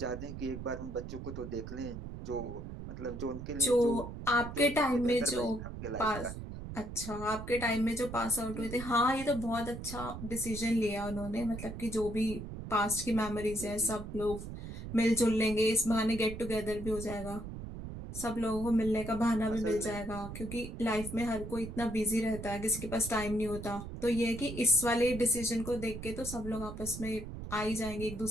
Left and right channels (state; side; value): noise; right; rumble, 9 dB below the sound